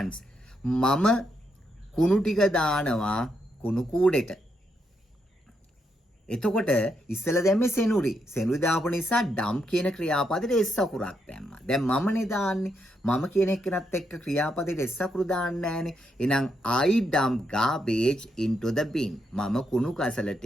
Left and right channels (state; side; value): normal; both; correlation 0.80